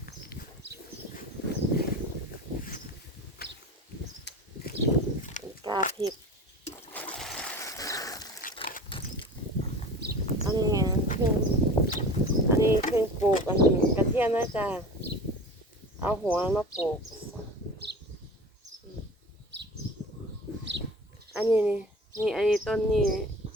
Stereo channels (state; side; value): normal; both; correlation 0.36